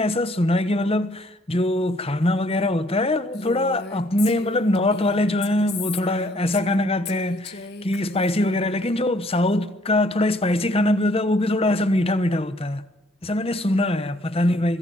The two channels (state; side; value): normal; both; correlation 0.64